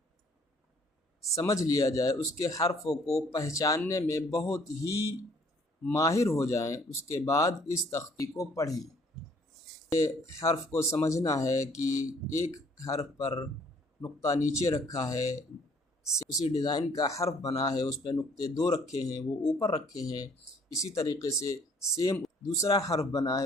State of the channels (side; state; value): both; normal; correlation 0.60